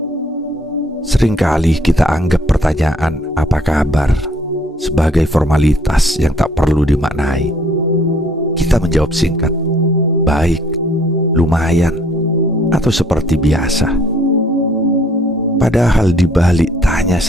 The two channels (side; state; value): both; normal; correlation 0.61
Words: Seringkali kita anggap pertanyaan "apa kabar?" sebagai formalitas yang tak perlu dimaknai. Kita menjawab singkat, "Baik, lumayan," atau seperti biasa. Padahal di balik tanya